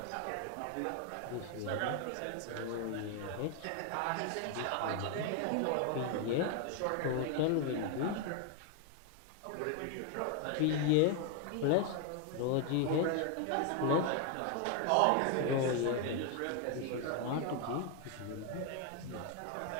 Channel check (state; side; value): different; both; correlation 0.01